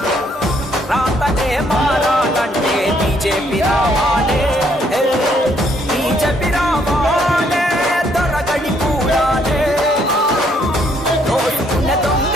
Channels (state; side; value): normal; both; correlation 0.69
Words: రాతనే మారాలంటే బీజేపీ రావాలే, బీజేపీ రావాలే, దొరగడి కూడాలే. దోచుకున్న